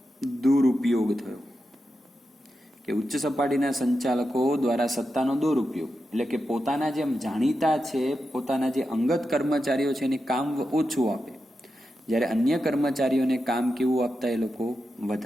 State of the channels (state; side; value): normal; both; correlation 0.89